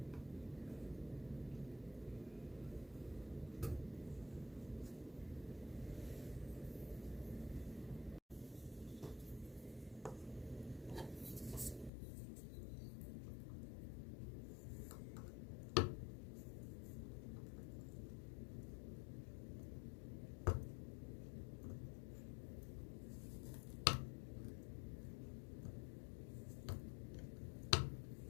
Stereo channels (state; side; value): drops out; right; at 11.9 s